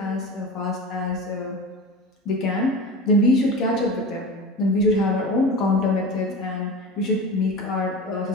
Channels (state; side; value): normal; both; correlation 0.31